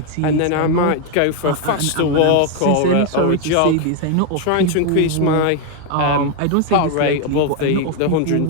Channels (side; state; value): both; different; correlation 0.01